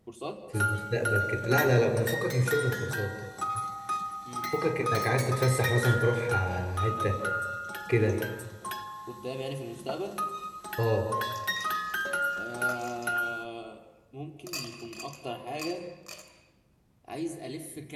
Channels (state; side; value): identical; both; correlation 1.00